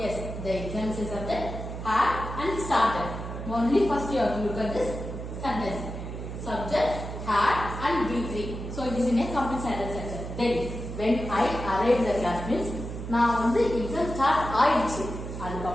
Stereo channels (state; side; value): noise; right; hum, 8 dB below the sound